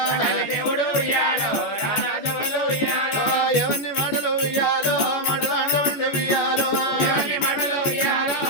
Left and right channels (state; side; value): late; right; 14 ms